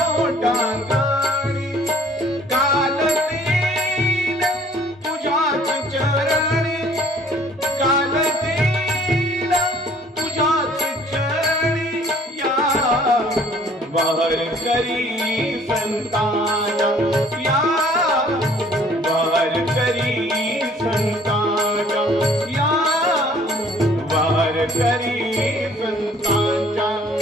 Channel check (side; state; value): both; normal; correlation 0.56